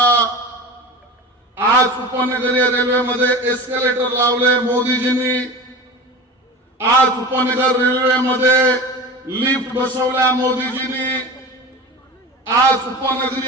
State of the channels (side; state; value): both; normal; correlation 0.32